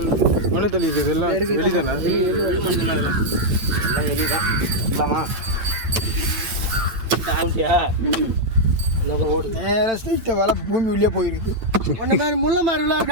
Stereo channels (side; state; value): left; late; 8.9 ms